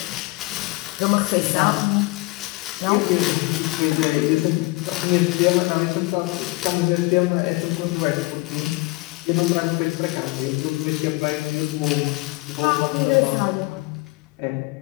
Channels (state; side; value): quieter; right; 23.2 dB